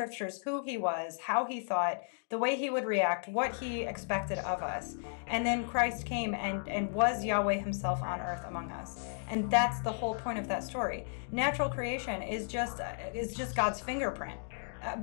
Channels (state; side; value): silent; right; digital silence